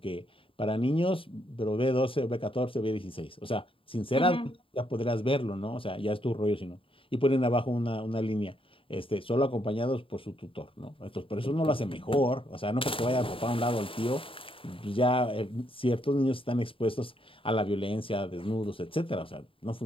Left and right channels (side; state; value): right; late; 0.26 ms